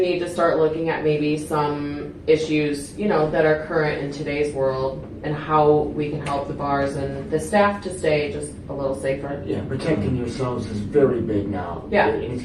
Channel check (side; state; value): both; identical; correlation 1.00